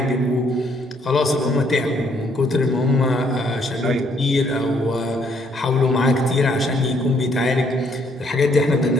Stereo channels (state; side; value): normal; both; correlation 0.68